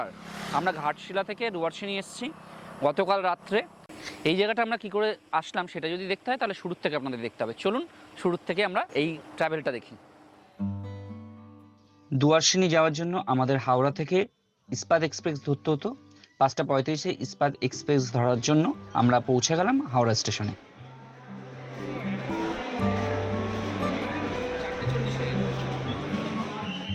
আমরা ঘাটশিলা থেকে দুয়ারসিনি এসেছি গতকাল রাত্রে। এই জায়গাটা আমরা কী করে আসলাম সেটা যদি দেখতে হয় তাহলে শুরুর থেকে আপনাদের দেখতে হবে। চলুন শুরুর থেকে আমরা এই ট্রাভেলটা দেখি। দুয়ারসিনি যাওয়ার জন্য আমাদের হাওড়া থেকে ইস্পাত এক্সপ্রেস ধরতে হতো। 5:35 ইস্পাত এক্সপ্রেস ধরার জন্য আমরা পৌঁছে গেলাম হাওড়া স্টেশনে।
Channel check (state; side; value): identical; both; correlation 1.00